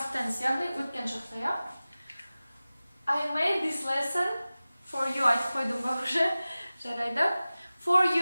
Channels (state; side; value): inverted; both; correlation -0.97